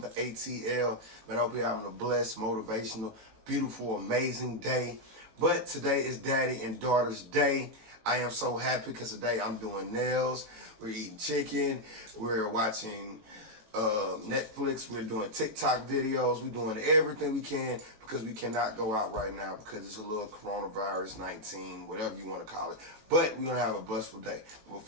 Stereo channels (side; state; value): left; late; 19 ms